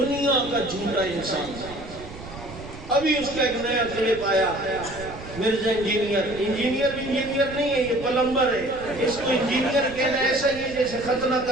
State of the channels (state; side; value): noise; right; rumble, 14 dB below the sound